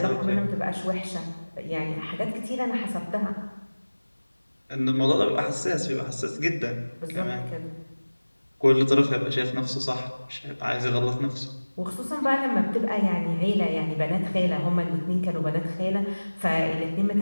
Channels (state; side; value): inverted; both; correlation -1.00